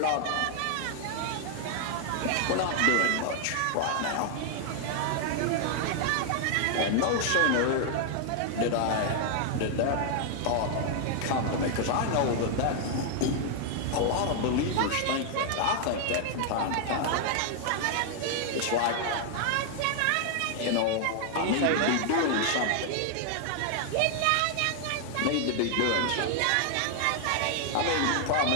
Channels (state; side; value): different; both; correlation 0.00